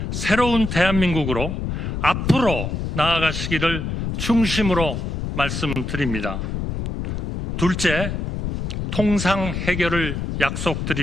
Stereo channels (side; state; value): left; noise; rumble, 3 dB below the sound